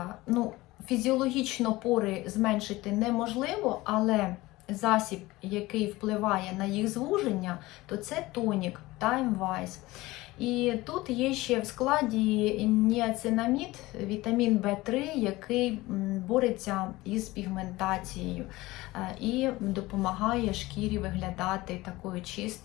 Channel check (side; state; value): right; quieter; 19.5 dB